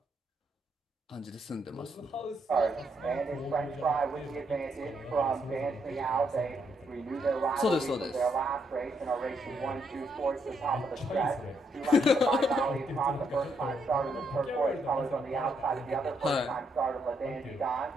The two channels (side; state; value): both; normal; correlation 0.76